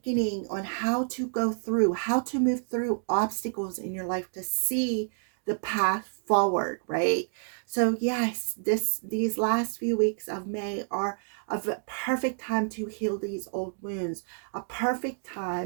on how to go through, how to move through obstacles in your life to see the path forward, right? So yes, these last few weeks of May are a perfect time to heal these old wounds, a perfect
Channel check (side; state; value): left; silent; digital silence